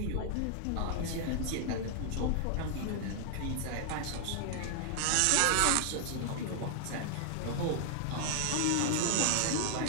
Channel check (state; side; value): different; both; correlation 0.00